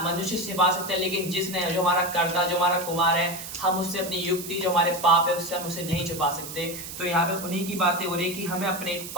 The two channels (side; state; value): right; noise; hiss, 10 dB below the sound